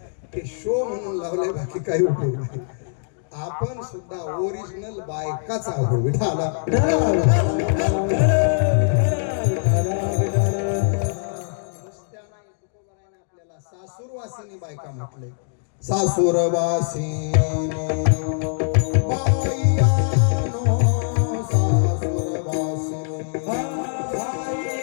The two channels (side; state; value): right; silent; digital silence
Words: ते शो म्हणून लावले, बाकी काही उपयोग नाही. आपण सुद्धा ओरिजिनल बायकाच आहोत. विठाला आपल्याला सासूरवासिनी बायका म्हटले. सासुरवासिनी बाईयानो सासुरवासिनी